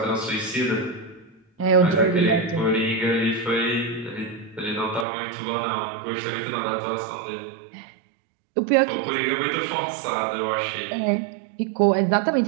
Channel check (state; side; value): drops out; left; at 5.1 s